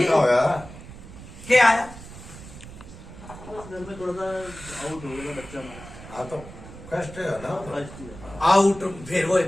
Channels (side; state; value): right; noise; rumble, 15 dB below the sound